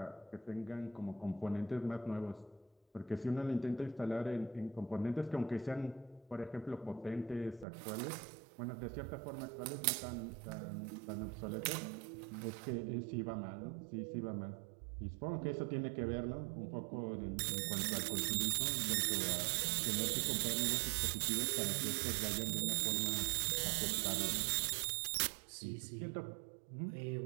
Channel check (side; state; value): left; drops out; at 7.7 s